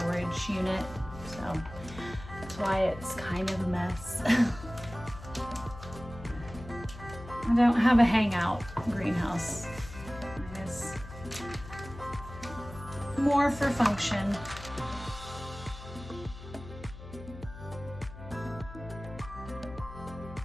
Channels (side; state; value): left; noise; hum, 14 dB below the sound